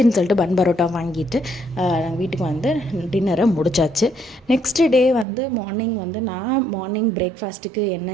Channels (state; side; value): drops out; left; at 5.2 s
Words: சொல்லிட்டு பன் பரோட்டா வாங்கிட்டு நாங்கள் வீட்டுக்கு வந்து டின்னரை முடிச்சாச்சு. நெக்ஸ்ட் டே வந்து மார்னிங் வந்து நான் பிரேக்ஃபாஸ்ட்டுக்கு